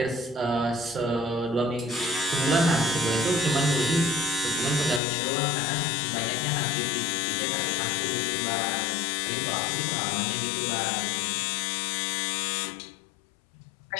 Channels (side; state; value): right; drops out; at 5.0 s